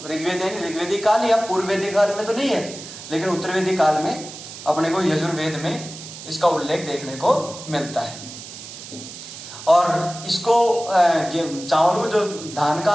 ऋग्वेद है ऋग्वेदिक काल या पूर्व वैदिक काल में तो नहीं है, लेकिन उत्तर वैदिक काल में अपने को यजुर्वेद में इसका उल्लेख देखने को मिलता है। और इसको चावल को जो धान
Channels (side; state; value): right; noise; hiss, 13 dB below the sound